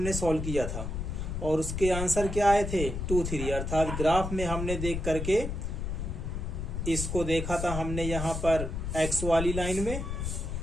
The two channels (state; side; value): noise; left; rumble, 4 dB below the sound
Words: सॉल्व किया था और उसके आंसर क्या आए थे 2, 3, अर्थात ग्राफ में हमने देख करके इसको देखा था हमने यहाँ पर x वाली लाइन में,